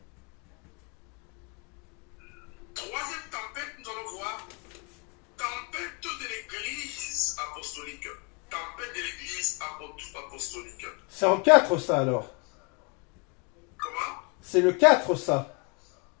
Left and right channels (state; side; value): quieter; right; 33.5 dB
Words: Troisième tempête, nous allons voir tempête de l'église apostolique. Tempête de l'église apostolique. C'est en 4 ça alors. Comment? C'est le 4 ça.